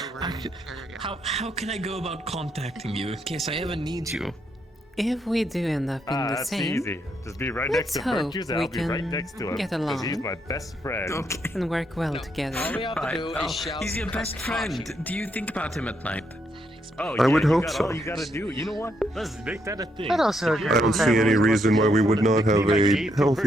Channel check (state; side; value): normal; both; correlation 0.77